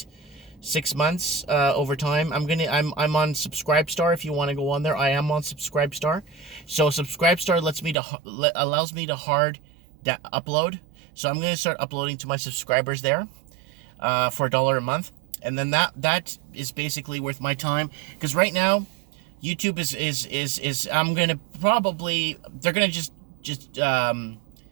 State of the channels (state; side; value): drops out; left; at 8.0 s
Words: 6 months, over time. I'm on Subscribestar. If you want to go on there, I am on Subscribestar. So Subscribestar allows me to hard upload. So I'm going to start uploading to my subscribers there for $1 a month, and then that is basically worth my time, because right now YouTube is I'm going to probably, they're going to just